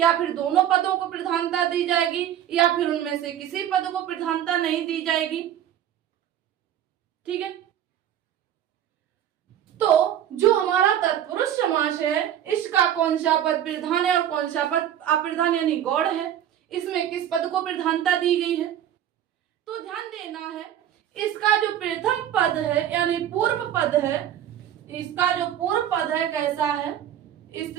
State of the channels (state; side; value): quieter; left; 10.8 dB